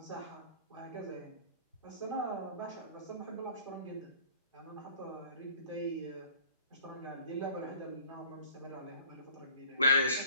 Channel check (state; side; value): inverted; both; correlation -0.50